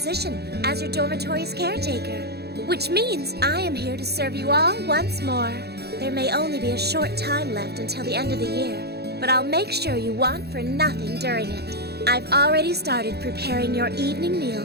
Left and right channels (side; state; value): left; late; 0.47 ms